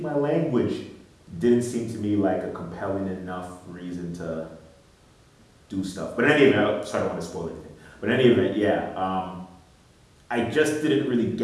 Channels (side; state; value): both; identical; correlation 1.00